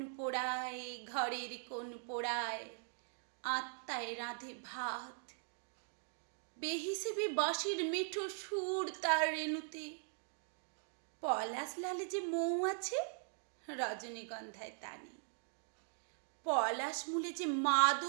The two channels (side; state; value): left; silent; digital silence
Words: পোড়ায়, ঘরের কোণ পোড়ায়, আত্মায় রাঁধে ভাত। বেহিসেবি বাঁশির মিঠো সুর তার রেণুতে। পলাশ লালে যে মৌ আছে, রজনীগন্ধায় তা নেই। পলাশ মূলে যে